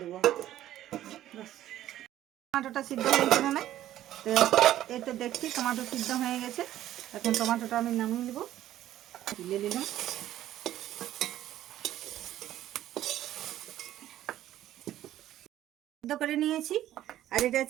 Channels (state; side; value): quieter; left; 13.0 dB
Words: দেবো। টমেটোটা সিদ্ধ হয়েছে না, তো এই তো দেখছি টমেটো সিদ্ধ হয়ে গেছে। এখন টমেটোটা আমি নামিয়ে দেবো, তুলে দিলাম। সিদ্ধ করে নিয়েছি। আর এটা